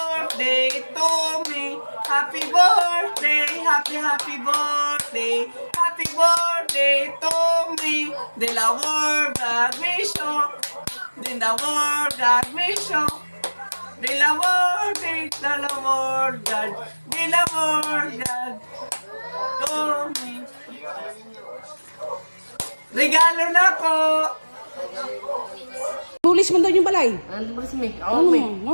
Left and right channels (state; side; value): inverted; both; correlation -1.00